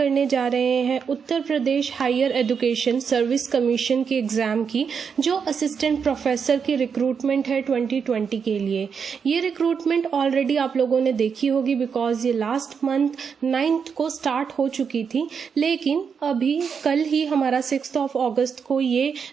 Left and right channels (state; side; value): quieter; left; 6.4 dB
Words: जा रहे हैं Uttar Pradesh higher education service commission की एग्ज़ाम की, जो असिस्टेंट प्रोफेसर की रिक्रूटमेंट है 2020 के लिए। ये रिक्रूटमेंट ऑलरेडी आप लोगों ने देखी होगी बिकॉज ये लास्ट मंथ 9th को स्टार्ट हो चुकी थी, लेकिन अभी कल ही हमारा 6 अगस्त को ये